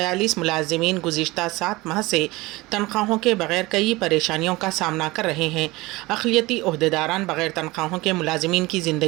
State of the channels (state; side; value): quieter; left; 21.3 dB